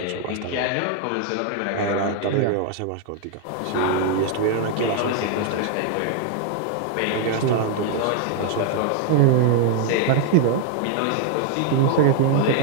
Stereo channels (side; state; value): both; different; correlation 0.00